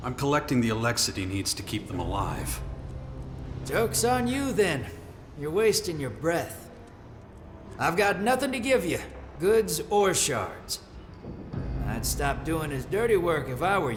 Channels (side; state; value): both; identical; correlation 1.00